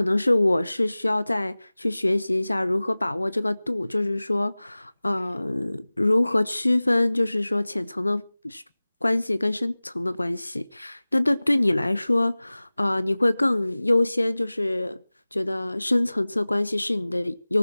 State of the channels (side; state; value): both; inverted; correlation -0.99